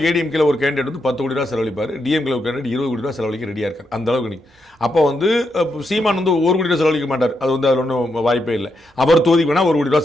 ஏடிஎம்கேல ஒரு கேண்டிடேட் வந்து 10 கோடி ரூபா செலவழிப்பார், டிஎம்கேல ஒரு கேண்டிடேட் 20 கோடி ரூபா செலவழிக்க ரெடியாக இருக்கார். அந்த அளவுக்கு நீ அப்போ வந்து சீமான் வந்து 1 கோடி ரூபா செலவழிக்க மாட்டார். அது வந்து அதில் ஒன்றும் வாய்ப்பே இல்லை. அவர் தொகுதிக்கு வேணால் 1 கோடி ரூபா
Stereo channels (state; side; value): normal; both; correlation 0.82